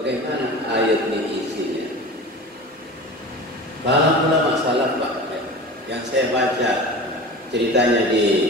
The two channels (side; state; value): both; normal; correlation 0.34